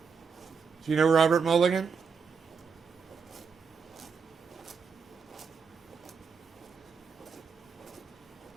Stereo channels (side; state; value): left; quieter; 5.7 dB